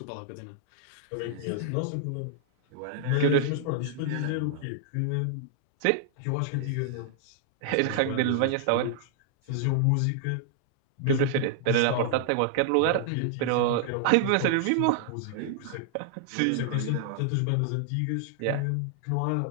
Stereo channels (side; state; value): both; different; correlation -0.01